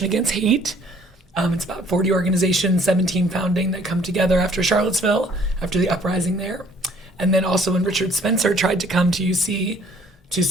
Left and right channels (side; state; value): both; normal; correlation 0.59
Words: Against Hate. It's about 40 organizations, 17 founding, that come together after Charlottesville, after the uprising there. And then also when Richard Spencer tried to come to UC to